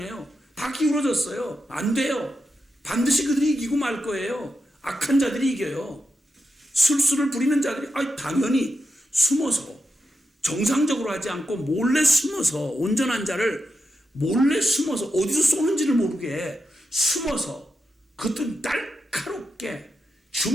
다 기울어졌어요. 안 돼요. 반드시 그들이 이기고 말 거예요. 악한 자들이 이겨요. 술수를 부리는 자들이 당연히 숨어서 정상적으로 하지 않고 몰래 숨어서 온전한 자를 몰래 숨어서 어디서 쏘는지를 모르게 숨어서 그것도 날카롭게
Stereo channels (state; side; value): normal; both; correlation 0.87